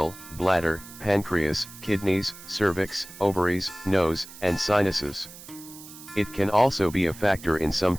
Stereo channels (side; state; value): right; noise; hiss, 17 dB below the sound